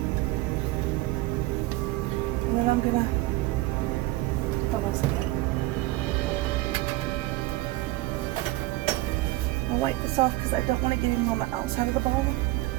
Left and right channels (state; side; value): quieter; left; 18.8 dB